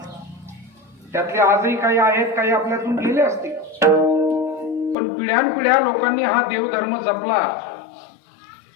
त्यातले आजही काही आहेत, काही आपल्यातून गेले असतील. पण पिढ्यानपिढ्या लोकांनी हा देवधर्म जपला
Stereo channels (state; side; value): drops out; right; at 5.0 s